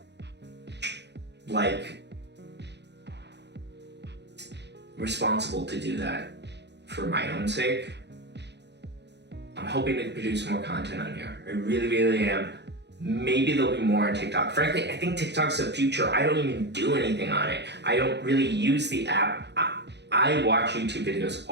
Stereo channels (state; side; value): late; left; 0.50 ms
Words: responsible to do that for my own sake. I'm hoping to produce more content on here. I really, really am. Maybe there'll be more on TikTok. Frankly, I think TikTok's the future. I don't even do anything on it. I don't really use the app. I watch YouTube videos